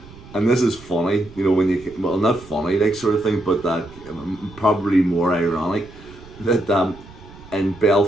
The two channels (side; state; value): right; noise; rumble, 20 dB below the sound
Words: and this is funny, you know, when you, well, not funny, like, sort of thing, but that probably more ironic, that in